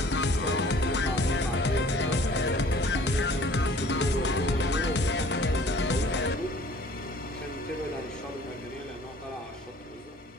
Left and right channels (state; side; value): normal; both; correlation 0.52